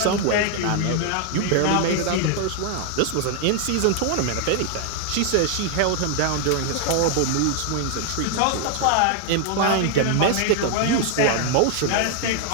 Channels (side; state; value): both; different; correlation 0.00